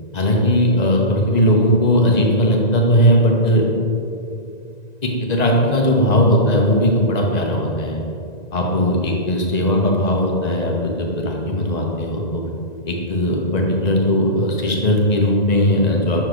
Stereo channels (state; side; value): late; right; 1.9 ms